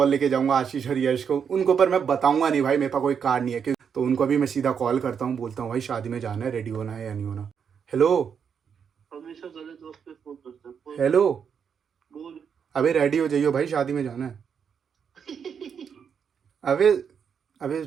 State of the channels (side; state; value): left; quieter; 7.1 dB